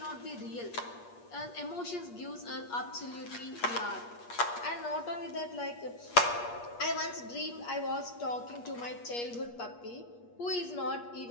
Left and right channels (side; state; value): right; late; 8.4 ms